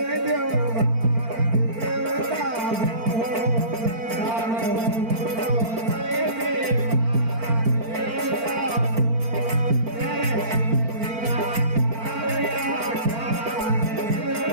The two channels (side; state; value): left; late; 4.4 ms